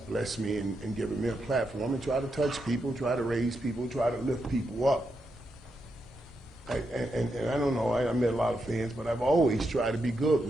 me and given me a platform and try to touch people, try to raise people, try to lift people up. And I don't know, I met a lot of fans, but I've always tried to be good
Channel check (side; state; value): both; normal; correlation 0.84